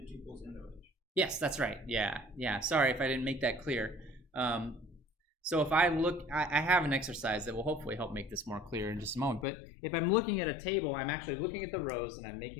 tuples in the relation? Yes, that's right. Yeah. Sorry if I didn't make that clear. So if I look, I have an exercise that will hopefully help make this more clear in just a moment. But if I'm looking at a table, I'm actually looking at the rows, and I'm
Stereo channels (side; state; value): right; drops out; at 9.5 s